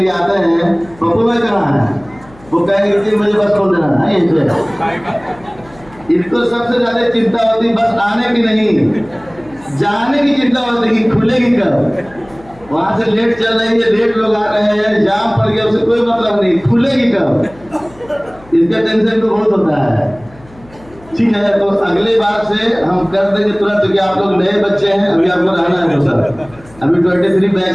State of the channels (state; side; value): noise; left; hum, 25 dB below the sound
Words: आते हैं, पप्पू भाई कहाँ है, वो कहेंगे 3 बजे बस खोल देना है। इनको सबसे ज्यादा चिंता होती बस आने की नहीं, जाने की चिंता होती कि खुलेगी कब। वहां से लेट चल रही है, लेट लोग आ रहे हैं, जाम पड़ गया, उससे कोई मतलब नहीं, खुलेगी कब, इसका टेंशन तो बहुत होता है। ठीक है, तो अगले बार से हम कर देंगे तुरंत, क्योंकि आप लोग नए बच्चे हैं, अभी आपको रहना है। तो सर अभी 23